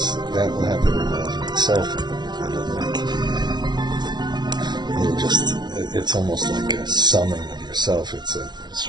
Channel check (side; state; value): left; late; 0.20 ms